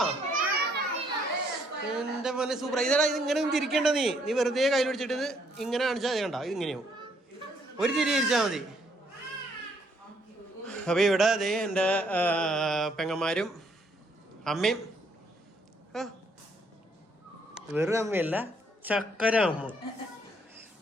എന്റെ മോനെ സൂപ്പർ. ഇതാ ഇത് ഇങ്ങനെ തിരിക്കണ്ട. നീ വെറുതെ കയ്യിൽ പിടിച്ചിട്ട് ഇങ്ങനെ കാണിച്ചാൽ കണ്ട ഇത് ഇങ്ങനെയാവും. ഒരു തിരി തിരിച്ചാൽ മതി. അപ്പൊ ഇവിടെ അതെ എൻ്റെ പെങ്ങന്മാരും അമ്മയും, വെറും അമ്മയല്ല ചക്കര അമ്മ.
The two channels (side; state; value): both; normal; correlation 0.69